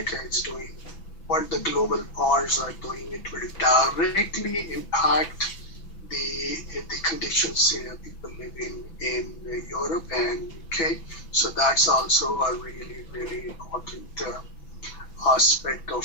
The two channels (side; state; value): right; late; 6.0 ms